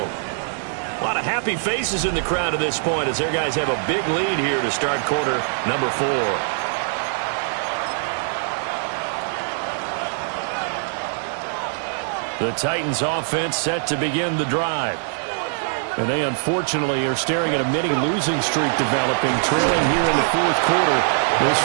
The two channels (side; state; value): left; silent; 64 dB below the other